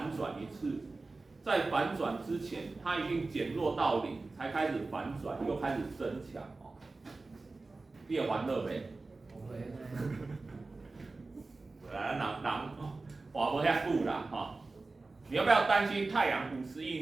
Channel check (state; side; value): quieter; left; 3.5 dB